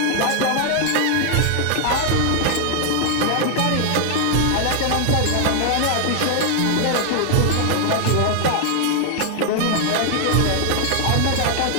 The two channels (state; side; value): different; both; correlation 0.00